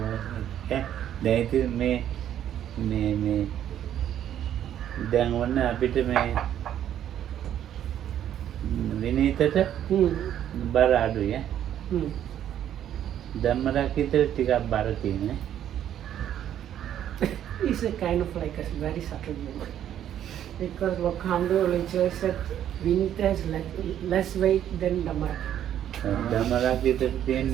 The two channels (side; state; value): left; quieter; 10.6 dB